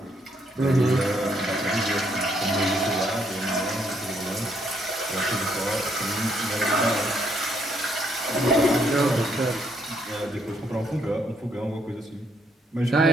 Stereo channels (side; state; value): both; normal; correlation 0.72